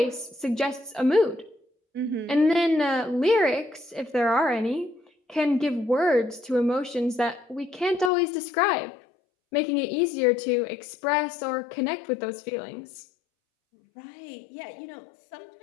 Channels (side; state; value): right; drops out; at 8.1 s